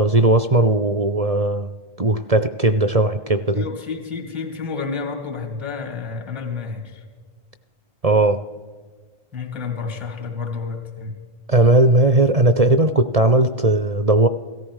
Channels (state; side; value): late; left; 1.7 ms